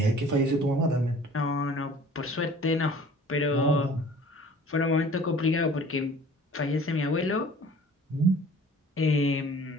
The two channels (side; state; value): both; normal; correlation 0.48